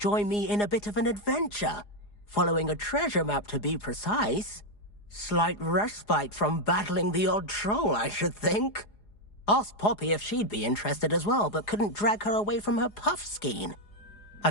me in a bit of an adventure. Following a treasure map, to be precise. Slight respite from battling the odd troll, I should think. Asked Poppy if she'd be interested as well, but couldn't drag her away from her puff skein. I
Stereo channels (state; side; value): late; right; 4.8 ms